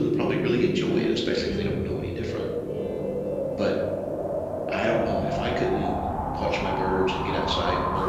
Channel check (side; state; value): both; identical; correlation 1.00